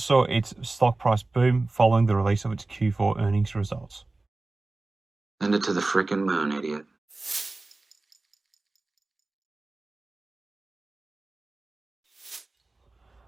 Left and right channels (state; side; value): quieter; left; 3.2 dB